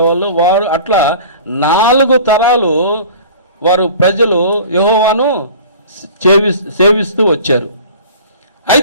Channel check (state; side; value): inverted; both; correlation -0.42